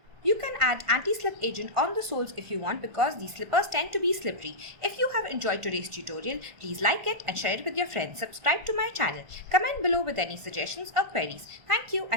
You can add anti-slip agent on the soles if you want because these slippers tend to be slippery. If you have enjoyed today's tutorial, please like it and share it with your friends. Subscribe to my channel. Comment below with any suggestions or queries. Thank you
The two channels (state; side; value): late; left; 1.6 ms